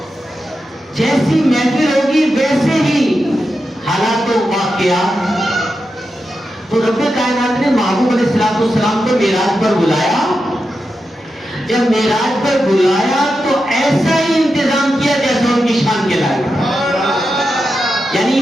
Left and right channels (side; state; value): both; normal; correlation 0.88